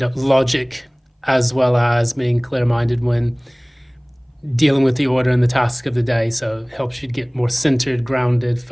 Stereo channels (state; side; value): identical; both; correlation 1.00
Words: logic, as well as being clear-minded when dealing with the order and the task of the day. So it helps you get more centered, grounded,